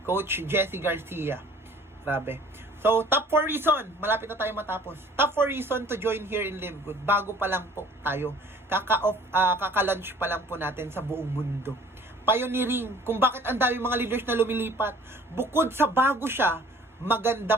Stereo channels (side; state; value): both; normal; correlation 0.51